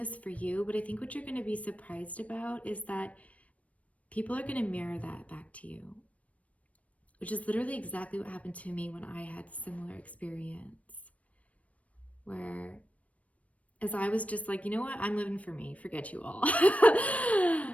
for you, but I think what you're going to be surprised about is that people are going to mirror that back to you, which is literally exactly what happened to me when I had a similar experience, where as I was just like, you know what, I'm living for me, forget you all.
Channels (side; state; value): right; late; 0.066 ms